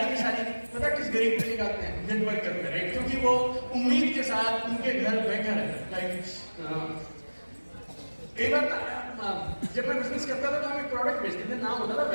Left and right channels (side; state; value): both; inverted; correlation -1.00